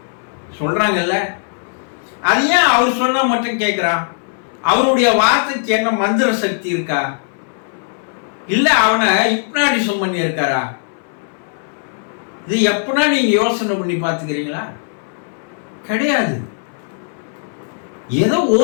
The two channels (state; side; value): silent; right; digital silence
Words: சொல்றாங்கல்ல, அது ஏன் அவர் சொன்னா மட்டும் கேட்கிறான்? அவருடைய வார்த்தைக்கு என்ன மந்திர சக்தி இருக்கா? இல்ல அவனை ஹிப்னாட்டிசம் பண்ணி இருக்காரா? இது எப்பனா நீங்க யோசனை பண்ணி பார்த்துக்கிறீங்களா? கிடையாது. ஏதோ